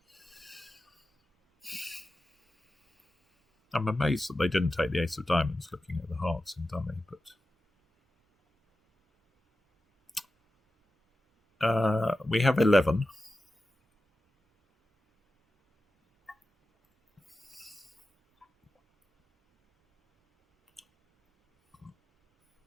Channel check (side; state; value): both; normal; correlation 0.93